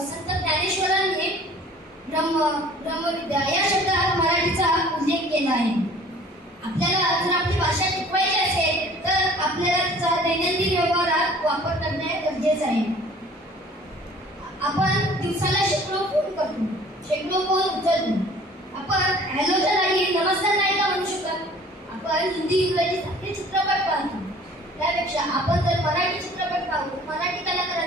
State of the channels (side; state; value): both; normal; correlation 0.50